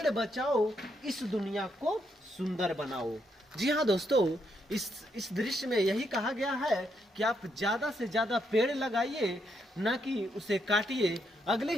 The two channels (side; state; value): both; normal; correlation 0.77